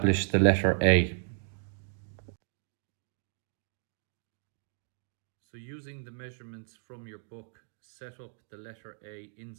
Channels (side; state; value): left; silent; digital silence